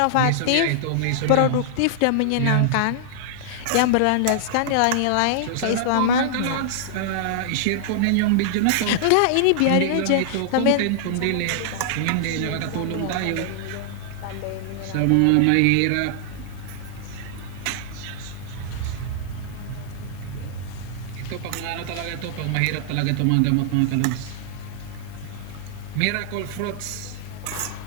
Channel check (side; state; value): both; different; correlation -0.01